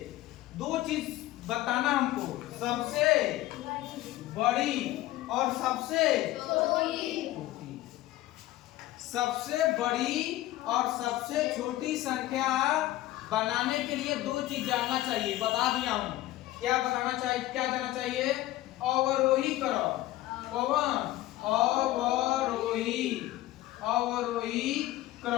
दो चीज बताना हमको, सबसे बड़ी और सबसे छोटी। सबसे बड़ी और सबसे छोटी संख्या बनाने के लिए दो चीज जानना चाहिए, बता दिया हूं। क्या बताना चाहिए, क्या जानना चाहिए? अवरोही क्रम। कौन? अवरोही, अवरोही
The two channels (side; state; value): right; quieter; 15.9 dB